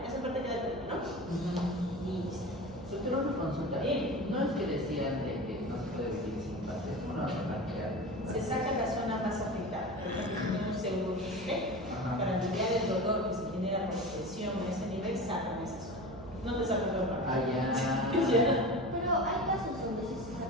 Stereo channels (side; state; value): right; noise; hum, 15 dB below the sound